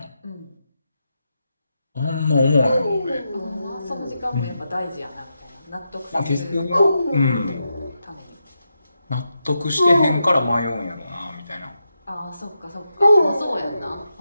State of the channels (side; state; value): both; inverted; correlation -0.86